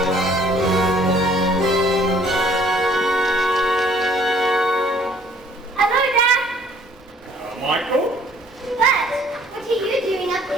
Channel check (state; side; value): normal; both; correlation 0.58